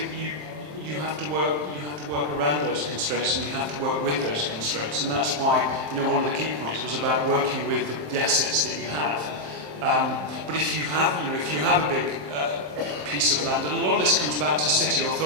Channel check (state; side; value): late; left; 27 ms